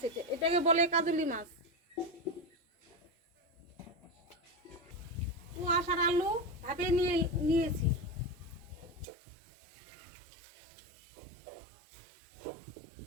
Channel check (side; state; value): left; drops out; at 9.1 s